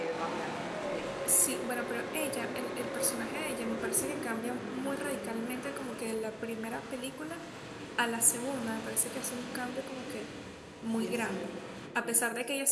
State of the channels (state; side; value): identical; both; correlation 1.00